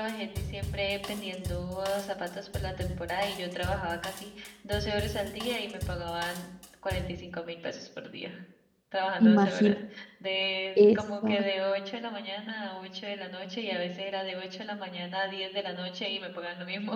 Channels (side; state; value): both; identical; correlation 1.00